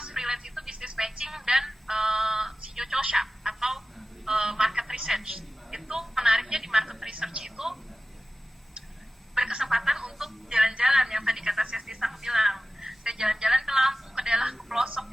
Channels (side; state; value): both; normal; correlation 0.95